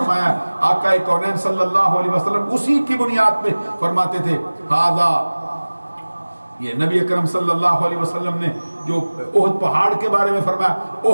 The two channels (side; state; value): both; inverted; correlation -1.00